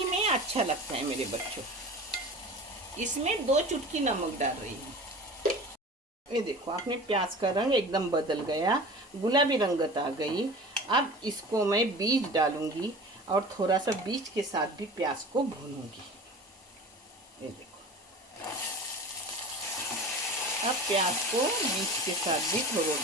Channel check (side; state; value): both; normal; correlation 0.37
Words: में अच्छा लगता है मेरे बच्चों। इसमें 2 चुटकी नमक डाल रही हूँ। ये देखो अपने प्याज का रंग एकदम बदल गया, गुलाबी रंगत आ गई। अब इसको मैं बीज डालूंगी और थोड़ा सा बीज के साथ भी प्याज को भूनूंगी। ये देखो, अब प्याज को बीज के साथ भी थोड़ा